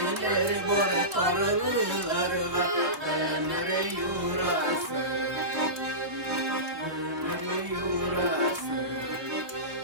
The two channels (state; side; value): late; left; 3.2 ms